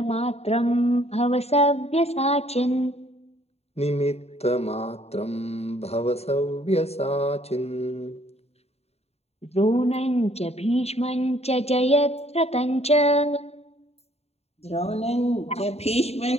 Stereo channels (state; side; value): late; right; 0.30 ms